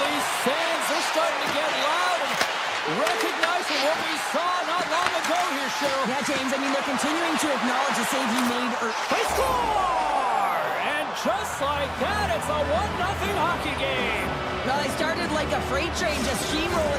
fans. They're starting to get loud and recognizing what we saw not long ago here, Cheryl. Yeah, James, I mean, they're continuing to acknowledge the save he made. They score! And just like that, it's a 1-0 hockey game. Well, they started like a freight train just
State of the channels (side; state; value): both; identical; correlation 1.00